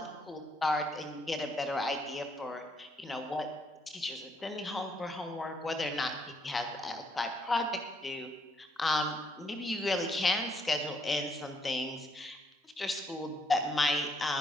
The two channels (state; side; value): normal; both; correlation 0.72